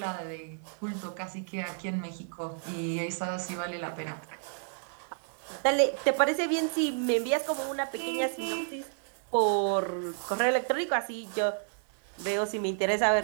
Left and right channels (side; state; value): left; silent; 57 dB below the other